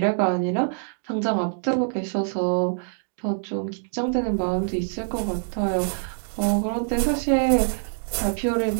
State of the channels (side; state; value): left; silent; digital silence